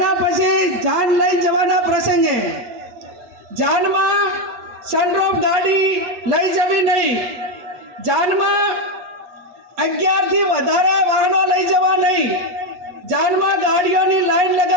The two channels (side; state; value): left; late; 8.4 ms